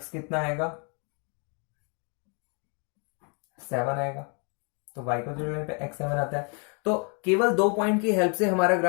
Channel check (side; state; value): right; quieter; 36.7 dB